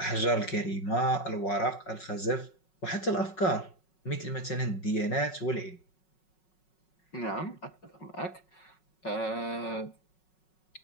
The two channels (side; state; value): right; late; 5.4 ms